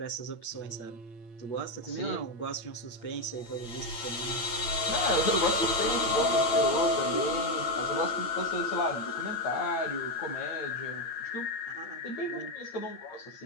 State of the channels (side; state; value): right; late; 8.8 ms